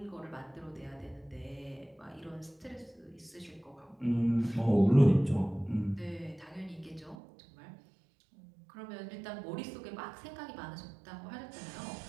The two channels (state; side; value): drops out; left; at 7.2 s